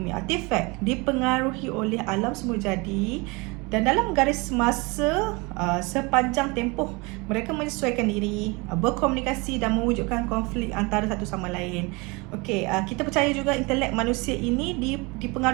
artifak dipengaruhi oleh alam semula jadi, dan dalam garis masa sepanjang tempoh mereka menyesuaikan diri, berkomunikasi dan mewujudkan konflik antara satu sama lain. Okey, kita percaya juga intelek manusia ini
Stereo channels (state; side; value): quieter; left; 26.8 dB